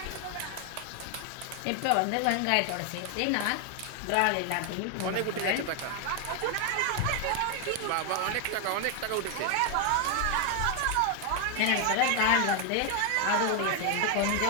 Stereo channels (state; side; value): different; both; correlation 0.01